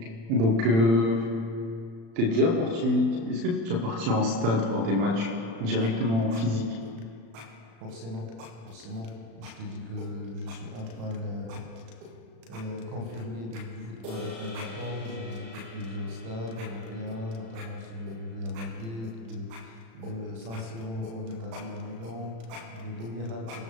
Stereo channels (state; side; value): late; left; 35 ms